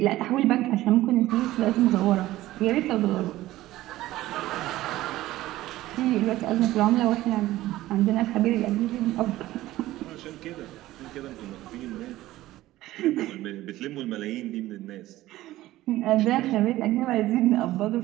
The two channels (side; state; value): left; quieter; 16.0 dB